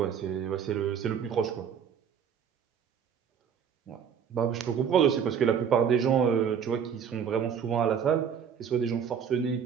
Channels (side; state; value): left; quieter; 7.6 dB